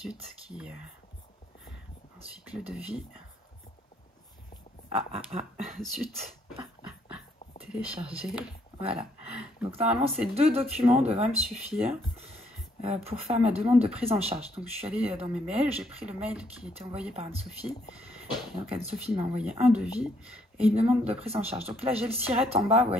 qui... Ensuite, le devis. Zut. Télécharger. Voilà. Donc, normalement, ces deux documents devraient me suffire pour faire ma demande de prise en charge. Donc, je suis allée dans mes mails. J'ai pris le mail qui était envoyé par Anne-Sophie. Donc, Anne-Sophie m'a envoyé un devis et une demande de prise en charge. Donc, là, j'ai le SIRET en bas, vous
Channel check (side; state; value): both; normal; correlation 0.69